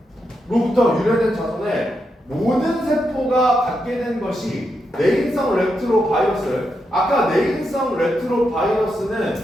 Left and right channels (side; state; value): both; normal; correlation 0.84